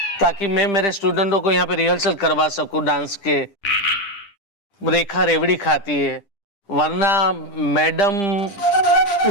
ताकि मैं मेरे स्टूडेंटों को यहाँ पे रिहर्सल करवा सकूं डांस के। रेखा रेवड़ी खाती है, वरना मैडम।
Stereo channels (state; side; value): late; right; 10 ms